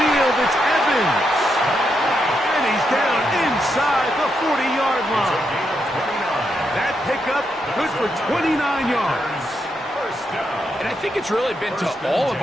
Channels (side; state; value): both; normal; correlation 0.82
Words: it's Evans. And he's down inside the 40-yard line. That pickup good for 29 yards. And I think it's really been to all of